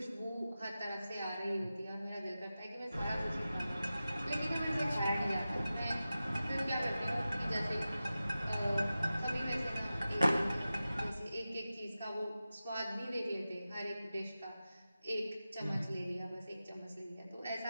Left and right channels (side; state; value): both; inverted; correlation -0.94